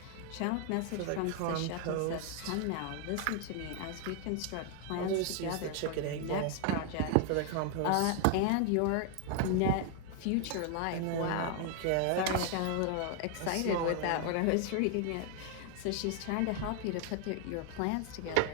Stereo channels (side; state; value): both; different; correlation 0.00